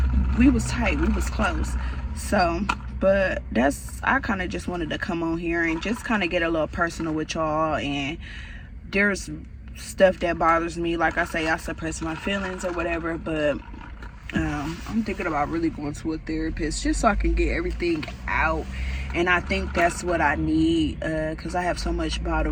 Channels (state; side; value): identical; both; correlation 1.00